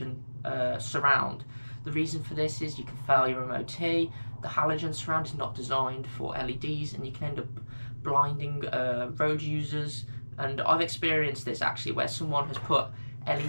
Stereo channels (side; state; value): both; inverted; correlation -1.00